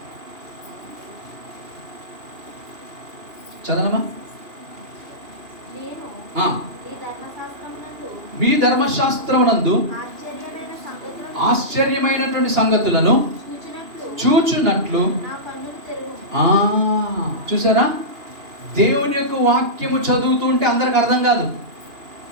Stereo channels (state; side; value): late; left; 2.8 ms